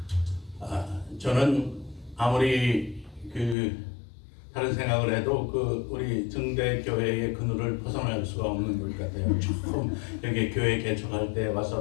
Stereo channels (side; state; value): right; drops out; at 3.6 s